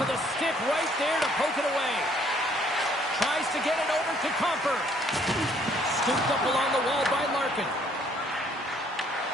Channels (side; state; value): both; normal; correlation 0.63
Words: of the stick right there to poke it away. Tries to get it over to Comfort. Scooped up along the wall by Larkin.